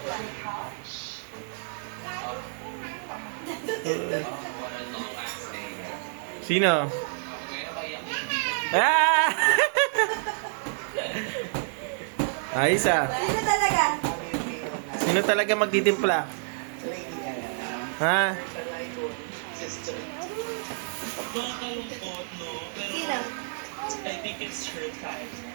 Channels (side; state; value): left; silent; digital silence